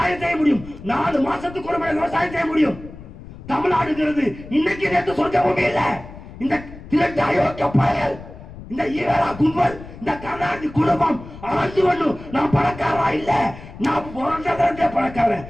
செய்ய முடியும். 4 மாசத்துக்கு ஒரு முறை விவசாயம் செய்ய முடியும். தமிழ்நாடுங்கிறது இன்னைக்கு நேற்று சொர்க்க பூமி இல்ல. இந்த திரட்டு அயோக்கிய பயல், இந்த ஈரா கும்பல், இந்த கர்நாடக குடும்பம் ஆண்டு ஒண்ணு நான் பணக்காரா இல்ல, நான் பிறந்தவரே பணக்காரன்,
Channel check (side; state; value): left; noise; rumble, 16 dB below the sound